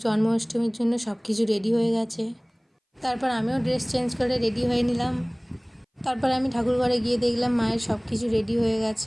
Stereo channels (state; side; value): identical; both; correlation 1.00